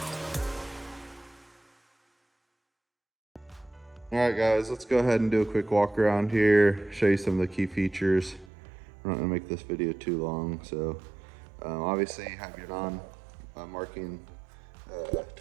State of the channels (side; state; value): left; drops out; at 8.5 s